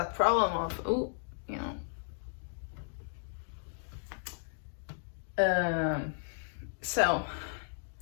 problem of, oh, you know. So,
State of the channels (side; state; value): right; silent; digital silence